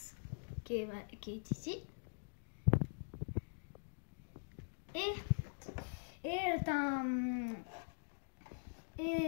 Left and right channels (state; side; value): silent; right; digital silence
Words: qui est ici. Et